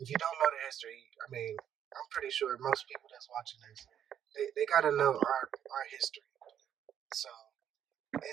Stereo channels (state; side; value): quieter; left; 9.6 dB